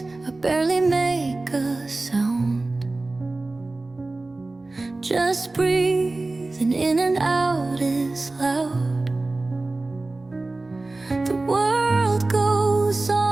I barely make a sound. Just breathing in and out is loud. The world goes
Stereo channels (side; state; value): left; quieter; 3.1 dB